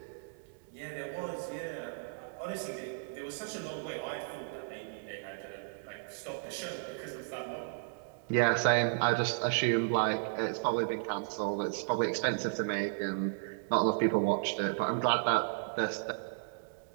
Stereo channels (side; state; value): left; silent; digital silence